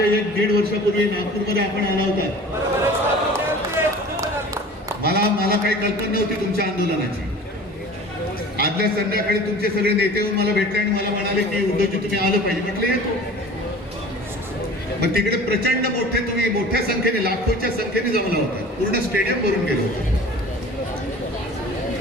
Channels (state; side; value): normal; both; correlation 0.42